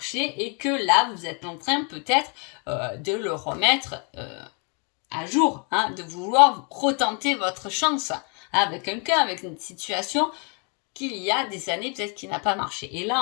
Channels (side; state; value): right; quieter; 35.9 dB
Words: et que là, vous êtes en train peut-être de le remettre à jour, hein, de vouloir retenter votre chance avec quelqu'un, avec une situation qu'il y a des années peut-être qui n'a pas marché. Et